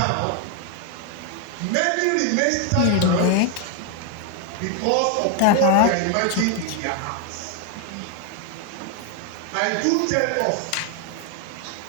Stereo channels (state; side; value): different; both; correlation 0.01